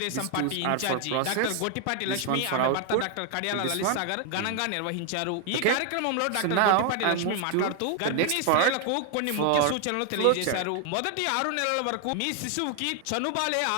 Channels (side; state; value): both; different; correlation 0.00